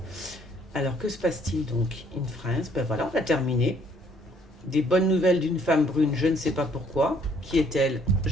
Alors, que se passe-t-il donc in France? Ben voilà, on a terminé. Des bonnes nouvelles d'une femme brune, je ne sais pas pourquoi. Qui est-elle?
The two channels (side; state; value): both; normal; correlation 0.63